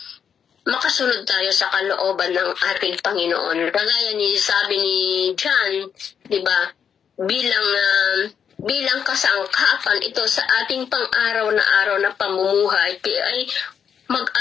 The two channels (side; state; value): right; quieter; 7.6 dB